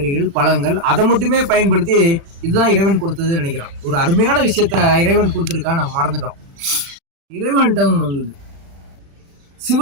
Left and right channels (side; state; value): left; late; 36 ms